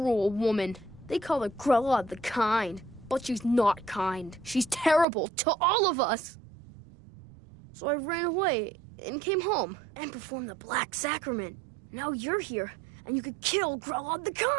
woman. They call her Grelod the Kind, but she's not kind. She's terrible to all of us. So I ran away and came home and performed the Black Sacrament. Now you're here, and you could kill Grelod the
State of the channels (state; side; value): drops out; left; at 5.1 s